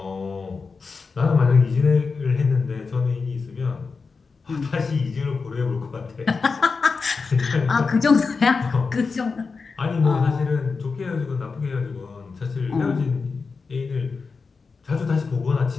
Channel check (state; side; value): quieter; right; 4.7 dB